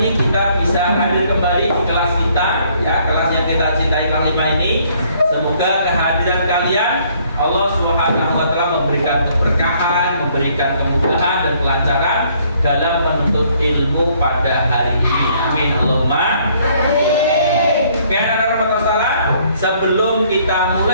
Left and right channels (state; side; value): inverted; both; correlation -0.64